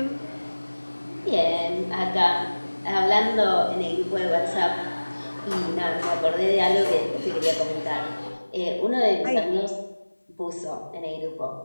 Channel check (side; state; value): both; inverted; correlation -1.00